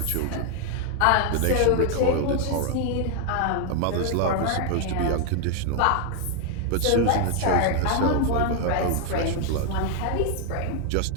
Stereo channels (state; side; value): different; both; correlation 0.00